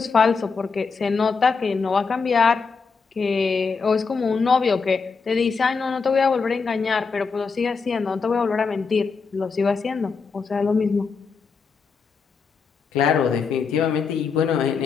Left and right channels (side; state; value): right; quieter; 5.1 dB